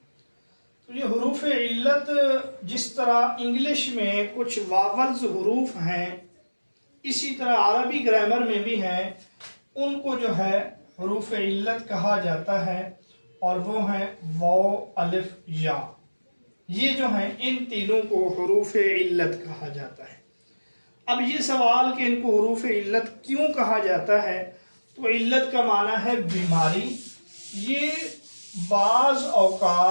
تو یہ حروف علت جس طرح انگلش میں کچھ واولز حروف ہیں اسی طرح عربی گرامر میں بھی ہیں، ان کو جو ہے حروف علت کہا جاتا ہے، اور وہ ہیں واو الف یا. یہ جو ہیں ان تینوں کو حروف علت کہا جاتا ہے. اب یہ سوال کہ ان کو حروف علت کیوں کہا جاتا ہے، تو علت کا معنی ہے بیماری. یہ بعض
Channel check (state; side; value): inverted; both; correlation -1.00